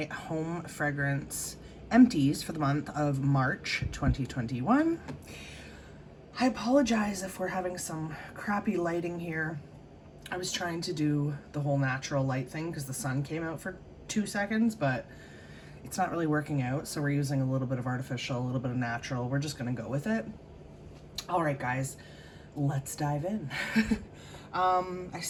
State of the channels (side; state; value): both; identical; correlation 1.00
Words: home fragrance empties for the month of March 2021. I apologize if we're having some crappy lighting here. I was trying to do the whole natural light thing because the sun came out for 2 seconds, but it's not really working out, so we're using a little bit of artificial, a little bit of natural. We're just gonna go with it. All right, guys, let's dive in. I